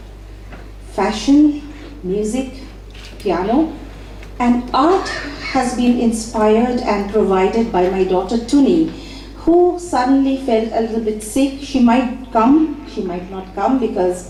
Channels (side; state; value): both; identical; correlation 1.00